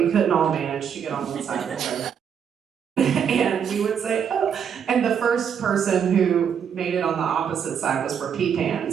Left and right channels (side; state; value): left; quieter; 7.8 dB